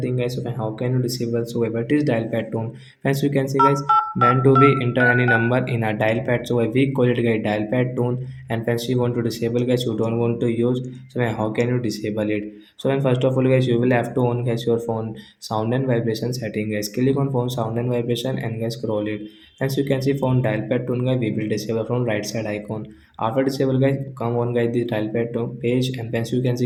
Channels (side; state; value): both; identical; correlation 1.00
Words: guys. So how can you disable? So what is dial pad tone? Friends, you can see guys when do we enter any number in a dial pad. So we call it guys dial pad tone, and friends you want to disable guys, you don't want to use. So how can you disable it? So when first of all guys you will have to on guys your phone sound and vibration setting guys. Click on phone sound and vibration and guys scroll it. As you can see phone dial pad tone guys, we will disable from right side icon. After disable guys, come on guys the dial pad tone page, and as you can